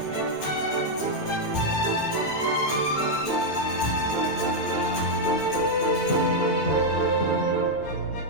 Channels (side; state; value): right; late; 8.8 ms